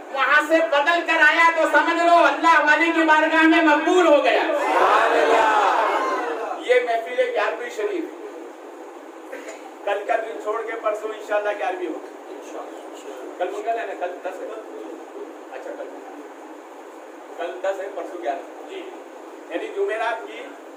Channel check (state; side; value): identical; both; correlation 1.00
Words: وہاں سے بدل کر آیا تو سمجھ لو اللہ والی کی بارگاہ میں مقبول ہو گیا. یہ محفل 11ویں شریف کل کا دن چھوڑ کے پرسوں انشاءاللہ 11ویں ہوگی. کل منگل ہے نا، کل 10 ہے. اچھا کل 10 ہے، پرسوں 11 جی، یعنی جمعرات کی